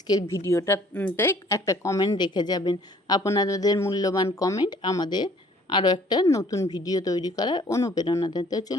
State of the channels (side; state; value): both; normal; correlation 0.57